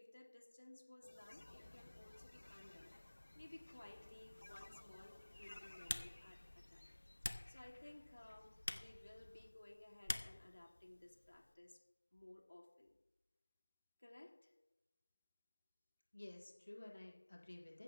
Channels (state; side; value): inverted; both; correlation -1.00